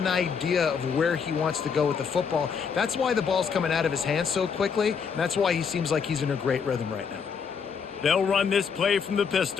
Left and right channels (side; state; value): right; quieter; 6.3 dB